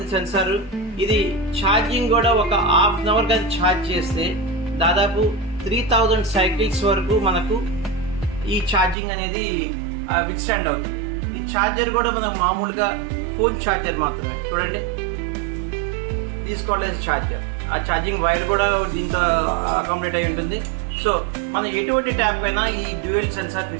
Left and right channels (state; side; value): drops out; left; at 9.0 s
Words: సెన్సార్. ఇది ఛార్జింగ్ కూడా ఒక హాఫ్ అన్ అవర్ కానీ ఛార్జ్ చేస్తే దాదాపు 3000 సైకిల్స్ వరకు మనకు ఈ ఛార్జింగ్ అనేది విత్స్టాండ్ అవుతుంది. ఈ ఛార్జర్ కూడా మనం మామూలుగా ఫోన్ ఛార్జర్ మాత్రమే. చూడండి, తీసుకోవాలి ఛార్జర్. ఆ ఛార్జింగ్ వైర్ కూడా దీంతో అకామిడేట్ అయి ఉంటుంది. సో మనం ఎటువంటి ట్యాప్ అయినా ఈ డ్యూయల్ సెన్సార్